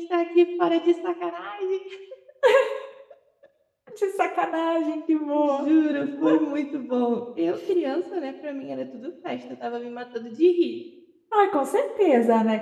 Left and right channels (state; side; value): identical; both; correlation 1.00